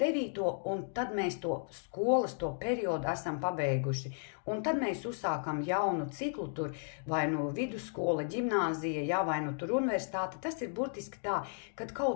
un tad mēs to skolas, to periodu esam pabeiguši. Un tad mēs uzsākam jaunu ciklu tur, vai vidusskola, ģimnāzija, ja, vai tur universitāte. Tas ir burtiski tā, kad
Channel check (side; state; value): right; silent; digital silence